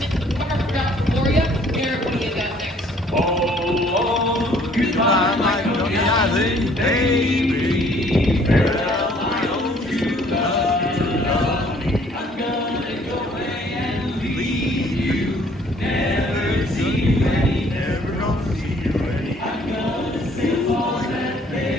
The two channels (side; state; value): both; normal; correlation 0.59